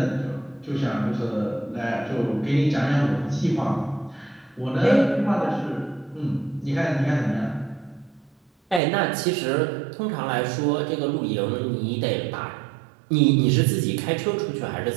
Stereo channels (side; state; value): left; drops out; at 8.8 s